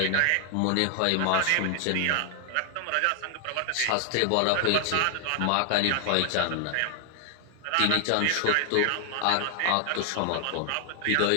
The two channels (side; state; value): both; different; correlation 0.00